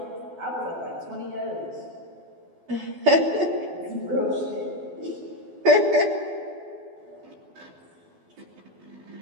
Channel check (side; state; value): left; late; 12 ms